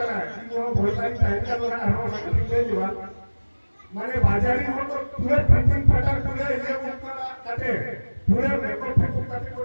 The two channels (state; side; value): inverted; both; correlation -1.00